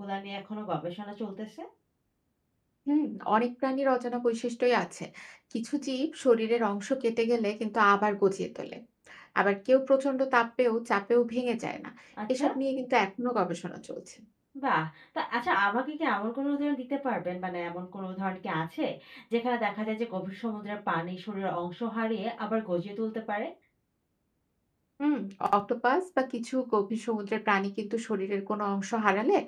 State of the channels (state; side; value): identical; both; correlation 1.00